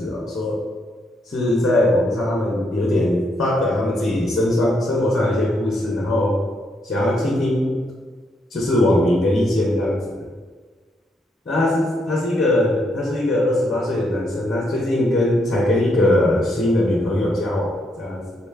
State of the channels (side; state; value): both; normal; correlation 0.76